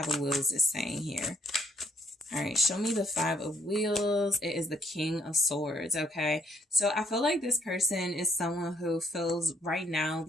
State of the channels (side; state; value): both; normal; correlation 0.68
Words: of Wheels is saying here. All right, show me the Five of Wheels. It is the King of Swords, okay? So I feel like this person is someone who feels right now